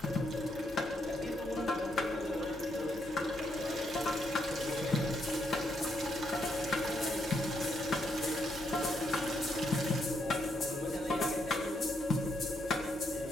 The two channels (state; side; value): normal; both; correlation 0.77